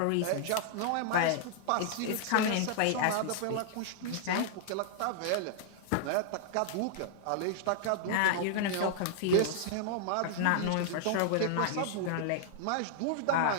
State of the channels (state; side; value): different; both; correlation -0.01